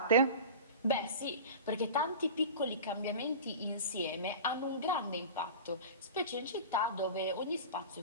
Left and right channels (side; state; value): both; inverted; correlation -0.33